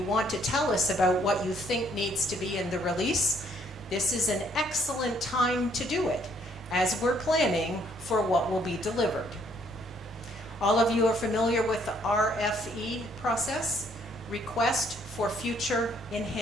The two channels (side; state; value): both; normal; correlation 0.66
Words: want to tell us about what you think needs to be in the release, this is an excellent time to do it as we're planning for what will be delivered. All of you are familiar with the RFE process, Request for Future